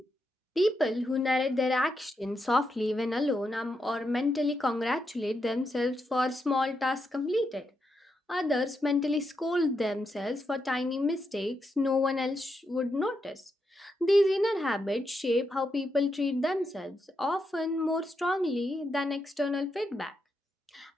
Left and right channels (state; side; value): normal; both; correlation 0.83